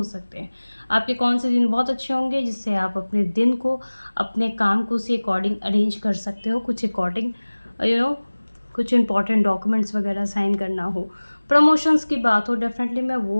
सकते हैं। आपके कौन से दिन बहुत अच्छे होंगे जिससे आप अपने दिन को, अपने काम को उसी अकॉर्डिंग अरेंज कर सकते हो। कुछ अकॉर्डिंग कुछ इंपॉर्टेंट डॉक्यूमेंट्स वगैरह साइन करना हो, प्रमोशंस की बात हो, डेफिनेटली मैं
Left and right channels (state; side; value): inverted; both; correlation -1.00